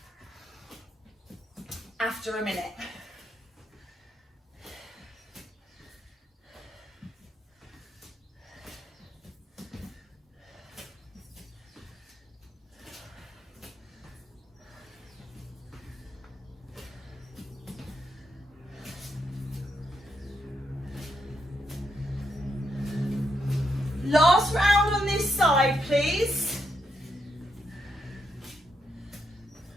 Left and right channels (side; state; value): both; normal; correlation 0.80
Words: after a minute. Last round on this side, please.